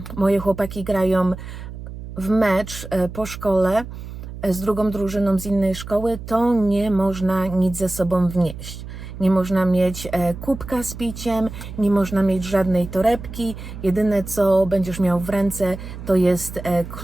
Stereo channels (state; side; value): noise; right; hum, 11 dB below the sound